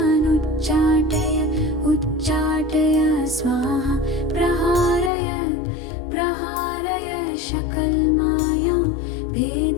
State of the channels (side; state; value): right; drops out; at 5.1 s